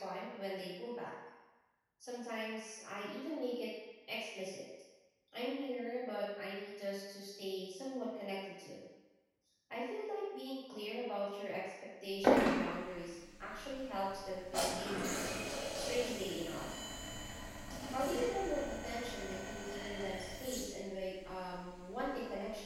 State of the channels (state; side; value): identical; both; correlation 1.00